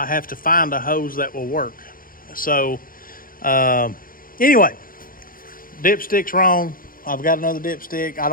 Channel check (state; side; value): late; right; 0.41 ms